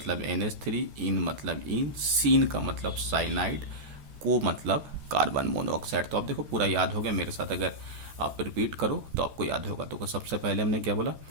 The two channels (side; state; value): left; late; 14 ms